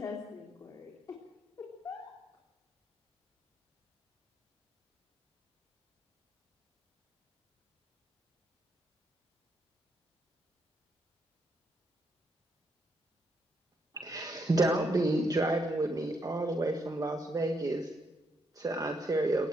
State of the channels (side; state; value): both; normal; correlation 0.77